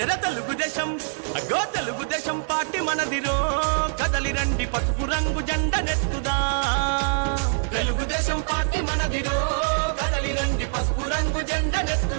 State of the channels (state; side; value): silent; left; digital silence